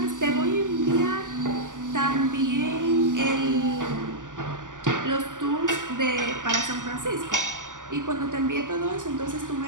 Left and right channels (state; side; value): late; left; 0.87 ms